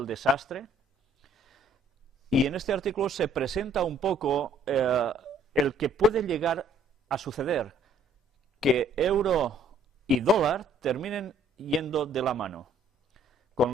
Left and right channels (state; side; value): normal; both; correlation 0.61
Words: desastre. Y en este artículo se presenta un poco el que puede llegar a suceder, que euro y dólar terminen yendo de la mano,